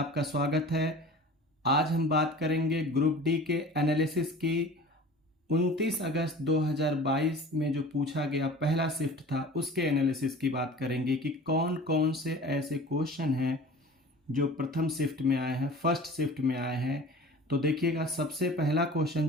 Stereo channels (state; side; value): normal; both; correlation 0.40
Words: स्वागत है। आज हम बात करेंगे ग्रुप डी के एनालिसिस की। 29 अगस्त 2022 में जो पूछा गया पहला शिफ्ट था उसके एनालिसिस की बात करेंगे कि कौन कौन से ऐसे क्वेश्चन हैं जो प्रथम शिफ्ट में आए हैं, फर्स्ट शिफ्ट में आए हैं। तो देखिएगा, सबसे पहला क्वेश्चन